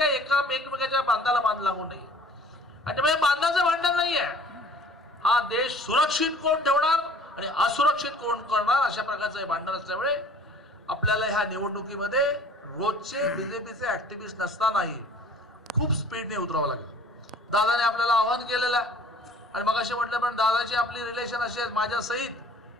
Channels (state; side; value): normal; both; correlation 0.51